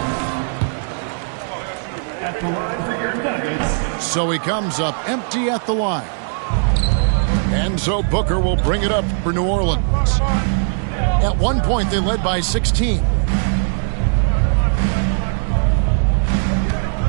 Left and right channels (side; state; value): left; silent; digital silence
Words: At the line for your Nuggets. So he comes up empty at the line. And so Booker will bring it up for New Orleans. At one point, they led by 16.